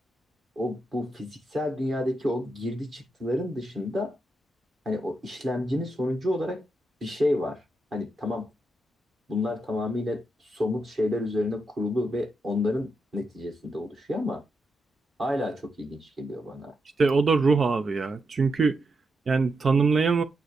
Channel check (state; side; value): normal; both; correlation 0.84